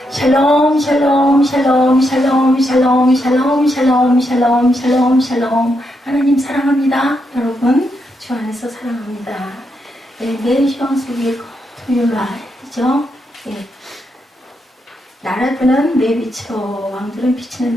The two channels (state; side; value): normal; both; correlation 0.81